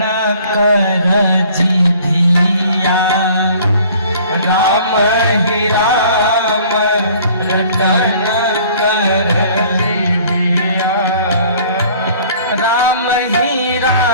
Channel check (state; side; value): inverted; both; correlation -0.53